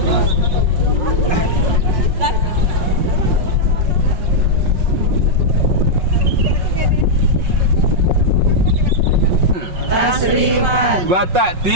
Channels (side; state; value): left; late; 5.5 ms